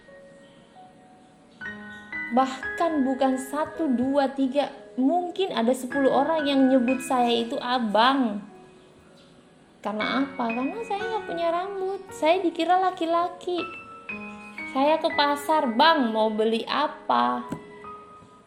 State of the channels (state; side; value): identical; both; correlation 1.00